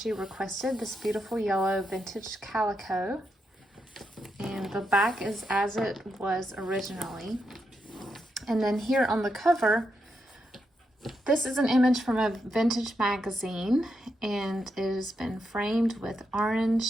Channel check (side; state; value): both; normal; correlation 0.83